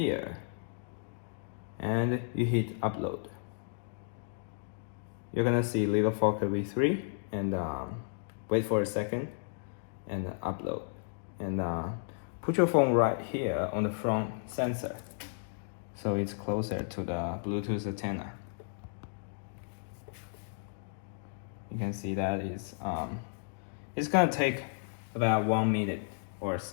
and you hit upload. You're gonna see little Fokker V3, and wait for a second, and upload. And put your phone right here on the front sensor, so it's closer to the Bluetooth antenna. You can see that it's gonna take about 1 minute or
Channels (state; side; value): silent; right; digital silence